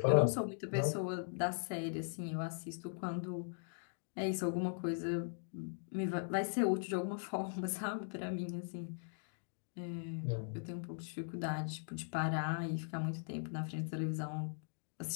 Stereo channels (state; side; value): silent; right; digital silence